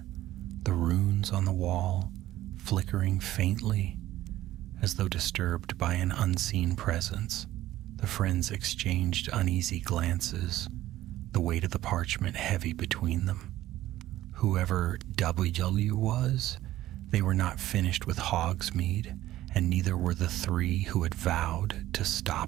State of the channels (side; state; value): left; quieter; 14.7 dB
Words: the runes on the wall flickering faintly, as though disturbed by an unseen presence. The friends exchanged uneasy glances, the weight of the parchment heavy between them. Whoever WW was, they were not finished with Hogsmeade, and neither were the three who had vowed to